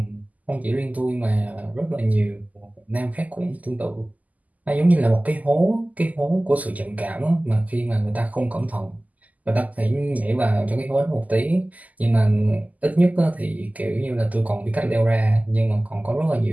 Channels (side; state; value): left; late; 0.077 ms